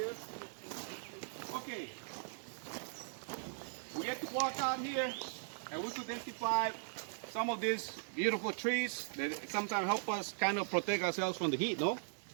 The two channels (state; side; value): silent; left; digital silence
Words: Okay. We get to walk out here and we could identify some of these beautiful trees that sometimes help us kind of protect ourselves from the heat, no?